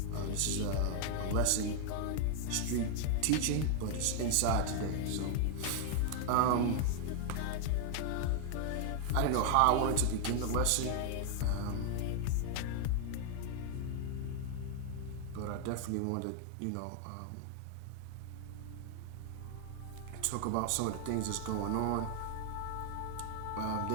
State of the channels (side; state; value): both; different; correlation 0.00